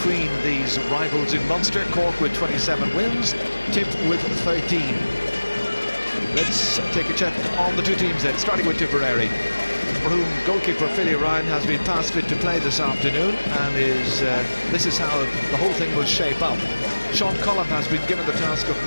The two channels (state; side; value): inverted; both; correlation -1.00